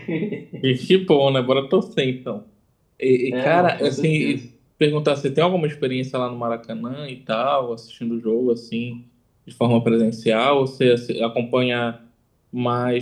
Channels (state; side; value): identical; both; correlation 1.00